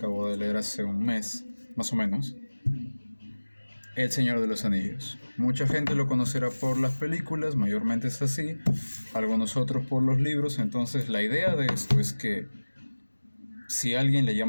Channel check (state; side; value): inverted; both; correlation -1.00